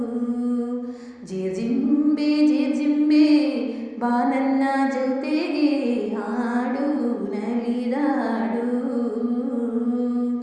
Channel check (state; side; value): identical; both; correlation 1.00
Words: ಜಿರ್ಜಿಂಬೆ ಬಾ ನನ್ನ ಜೊತೆಗೆ ಹಾಡು ನಲಿದಾಡು.